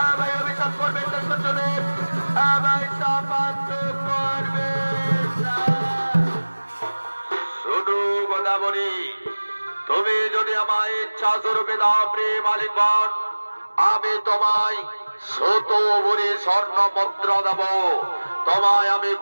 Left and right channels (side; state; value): both; inverted; correlation -1.00